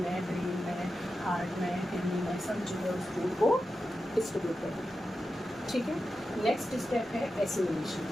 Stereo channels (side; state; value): both; normal; correlation 0.91